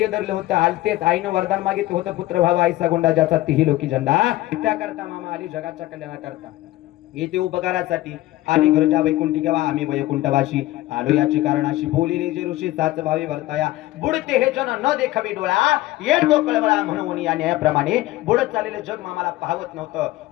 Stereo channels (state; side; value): quieter; right; 16.8 dB